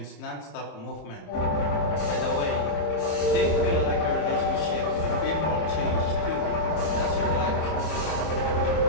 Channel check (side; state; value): right; late; 26 ms